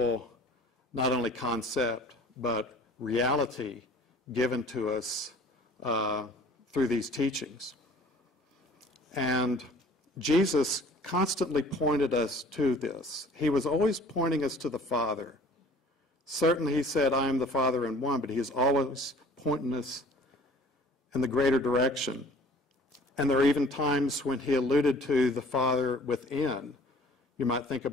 not only concept, but reality given to us through these teachings. And Jesus constantly pointed us to this. He was always pointing us to the Father. Certainly he said, I am the Father in one, but he is always pointing us in the greater direction. And there are even times when he alluded to the Father within. You might think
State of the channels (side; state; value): both; normal; correlation 0.50